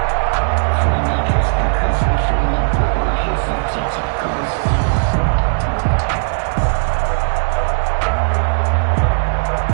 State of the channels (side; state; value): left; silent; digital silence